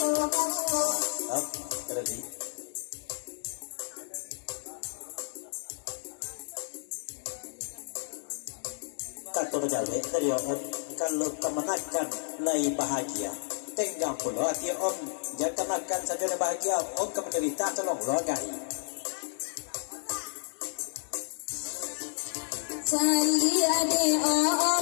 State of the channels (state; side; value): silent; right; digital silence